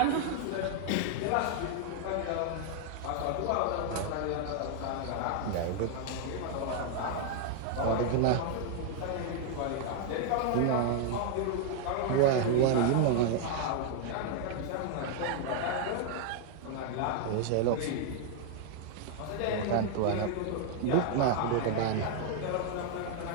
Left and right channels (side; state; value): both; different; correlation 0.00